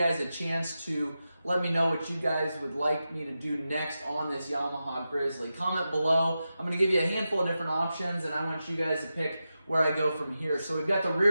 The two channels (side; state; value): both; inverted; correlation -0.91